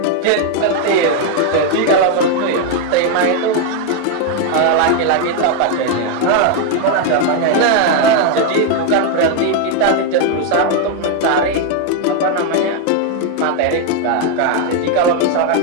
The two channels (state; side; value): different; both; correlation 0.01